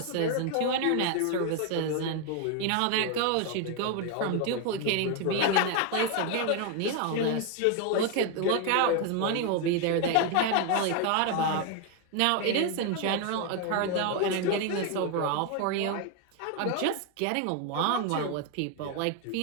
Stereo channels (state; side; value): different; both; correlation 0.01